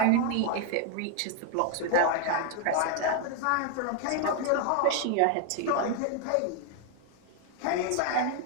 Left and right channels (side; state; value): both; different; correlation 0.00